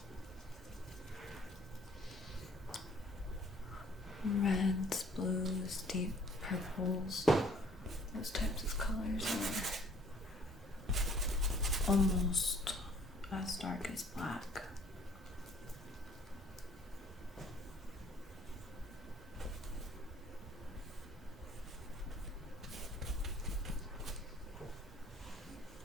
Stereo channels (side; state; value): both; normal; correlation 0.56